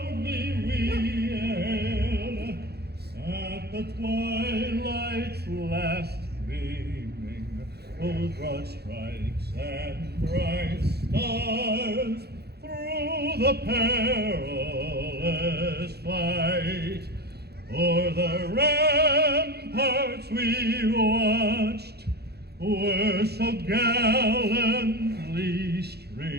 we hail, at the twilight's last gleaming, those broad stripes and bright stars, through the perilous fight, o'er the ramparts we watched, were so gallantly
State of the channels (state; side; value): late; left; 0.47 ms